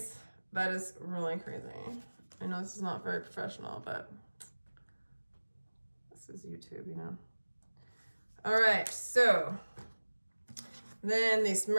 That is really crazy. I know this is not very professional, but this is YouTube, you know. All right, so then this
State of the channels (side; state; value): both; inverted; correlation -1.00